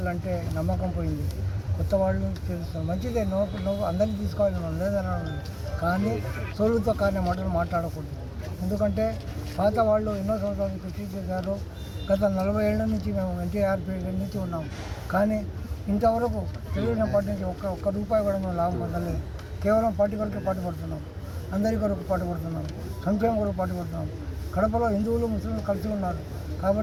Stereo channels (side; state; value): both; identical; correlation 1.00